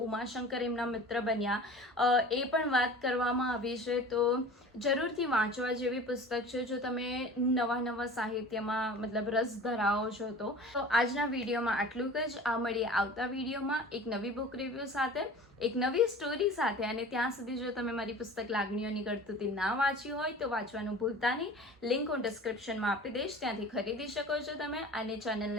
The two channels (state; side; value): normal; both; correlation 0.40